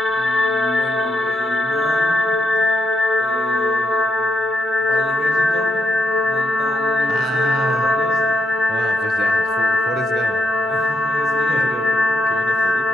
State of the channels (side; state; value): both; normal; correlation 0.81